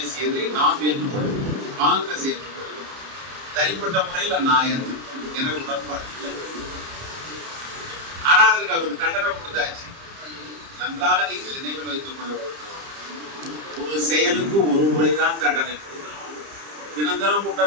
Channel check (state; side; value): late; left; 30 ms